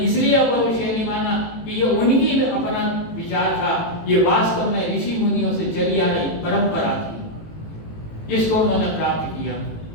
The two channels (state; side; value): late; right; 18 ms